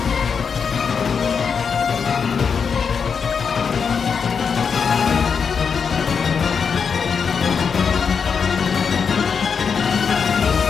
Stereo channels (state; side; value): quieter; right; 6.1 dB